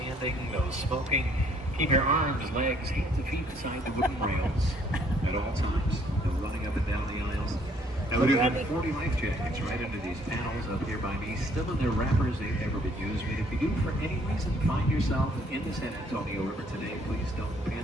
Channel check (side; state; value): both; normal; correlation 0.63